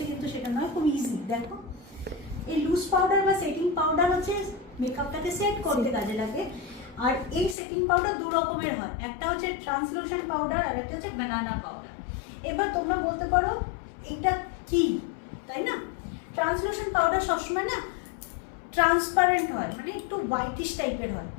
কিন্তু সেটা নয়, খুব ইজি। দেখো, এই লুজ পাউডার বা সেটিং পাউডার হচ্ছে মেকআপটাকে সেট করতে কাজে লাগে। আর এই সেটিং পাউডার দু রকমের হয়, একটা হচ্ছে ট্রান্সলুশন পাউডার আর একটা হচ্ছে বানানা পাউডার। এবার তোমরা বলতে পারো এটা কি, তাই না? ট্রান্সলুশন পাউডার সবসময় না ট্রান্সপারেন্ট হয়, মানে একটু হোয়াইটিশ টাইপের হয়,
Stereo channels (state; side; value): drops out; right; at 7.6 s